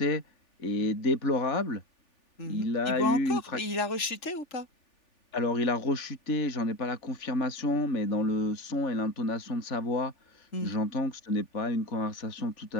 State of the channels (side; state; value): right; late; 3.4 ms